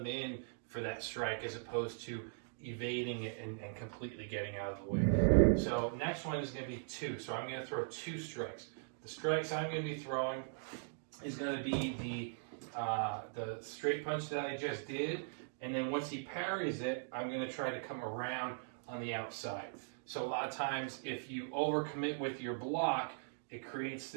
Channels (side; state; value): left; silent; digital silence